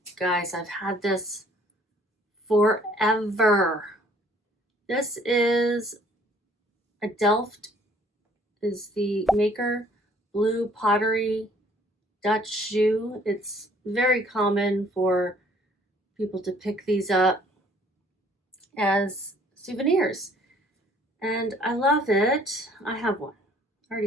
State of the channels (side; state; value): both; normal; correlation 0.59